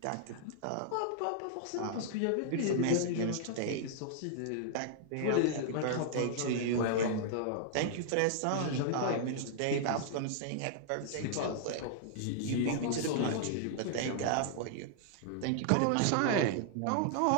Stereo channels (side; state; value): both; different; correlation -0.01